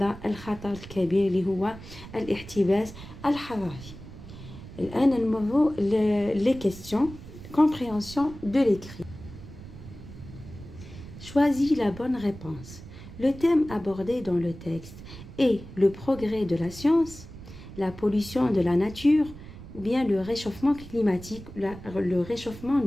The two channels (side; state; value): right; noise; rumble, 15 dB below the sound